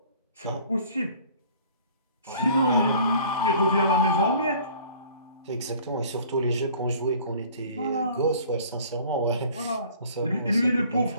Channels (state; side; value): inverted; both; correlation -0.51